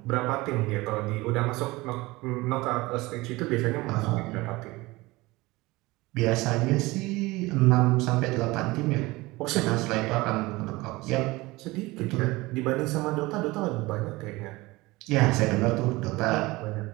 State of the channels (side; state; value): left; quieter; 21.2 dB